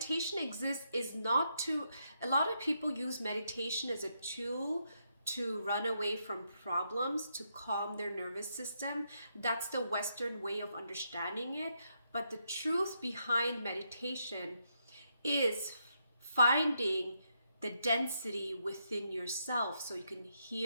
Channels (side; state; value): both; inverted; correlation -0.79